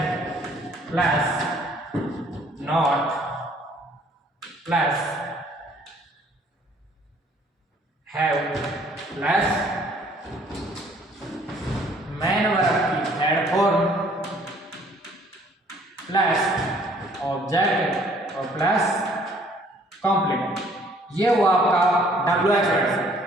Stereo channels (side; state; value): both; normal; correlation 0.59